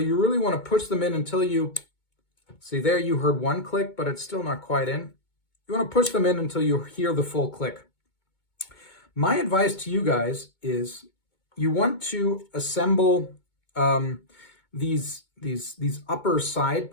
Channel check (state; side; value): late; right; 2.2 ms